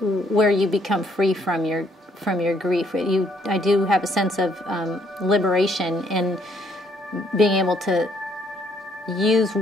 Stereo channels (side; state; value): both; normal; correlation 0.68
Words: where you become free from your grief. I do have a sense of liberation in being able to use